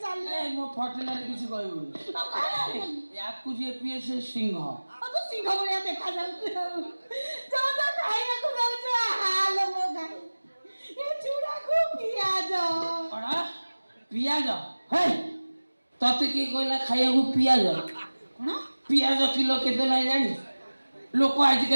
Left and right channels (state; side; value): inverted; both; correlation -1.00